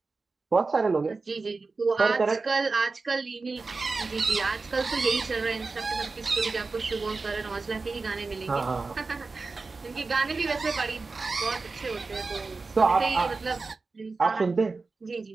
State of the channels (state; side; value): quieter; left; 4.0 dB